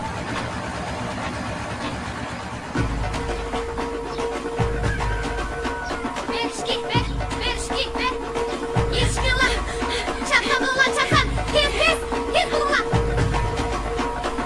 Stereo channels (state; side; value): identical; both; correlation 1.00